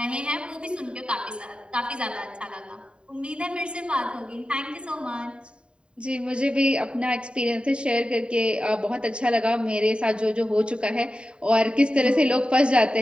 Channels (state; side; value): late; left; 0.053 ms